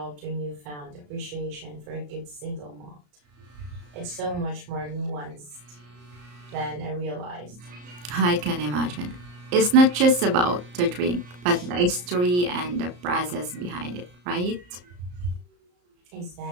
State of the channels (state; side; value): late; left; 34 ms